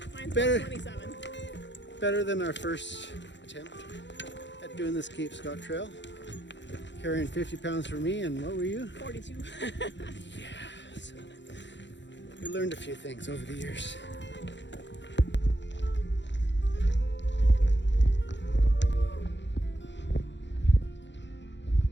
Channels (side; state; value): right; late; 0.52 ms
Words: mine's better, 27. Better than our first attempt at doing this Cape Scott Trail. Carrying 50 pounds for me, and what were you? 42. Yeah, so we learned a few things over the years.